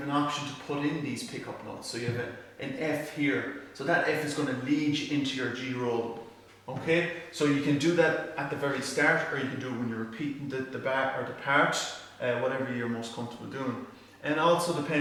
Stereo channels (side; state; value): both; identical; correlation 1.00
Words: an option to put in these pickup notes. So you have an F here. So that F is going to lead you into your G roll. Okay, so you can do that at the very start, or you can do it when you're repeating the bar or the part, whatever you're most comfortable doing. And it also